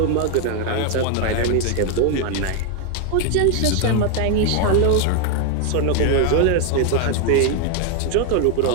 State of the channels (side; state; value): both; different; correlation 0.01